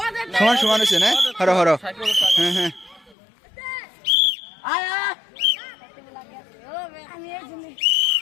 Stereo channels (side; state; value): right; drops out; at 3.2 s